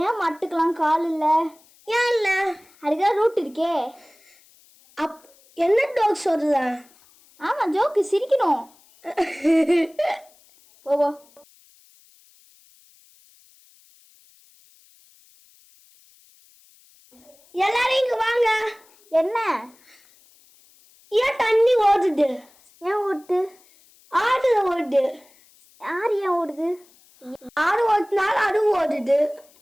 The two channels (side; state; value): left; noise; hiss, 29 dB below the sound